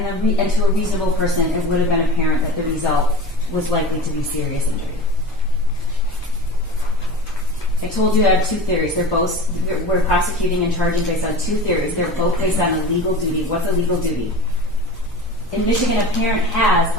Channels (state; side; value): normal; both; correlation 0.34